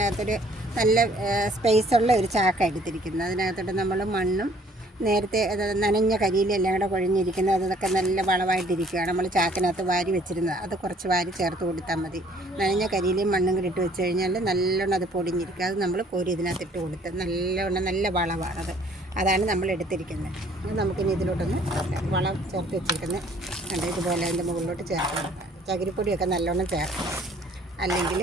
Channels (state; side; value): normal; both; correlation 0.59